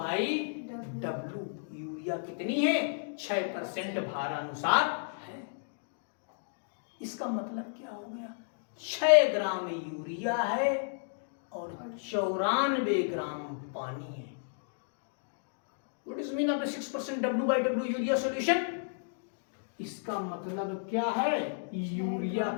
यूरिया कितनी है? 6% भारानुसार है। इसका मतलब क्या हो गया? 6 ग्राम यूरिया है और 94 ग्राम पानी है। What is mean of the 6% W/W urea solution? इसका मतलब क्या है? यूरिया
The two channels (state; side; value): silent; right; digital silence